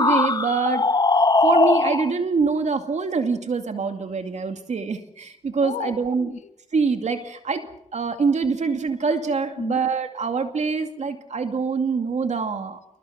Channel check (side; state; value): both; normal; correlation 0.55